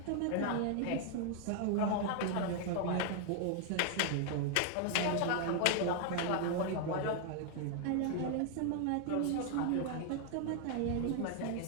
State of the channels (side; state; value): both; different; correlation 0.00